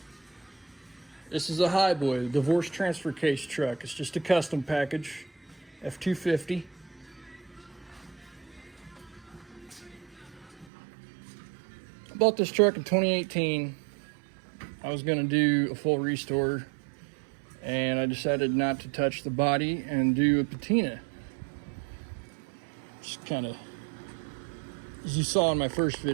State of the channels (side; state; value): left; drops out; at 10.7 s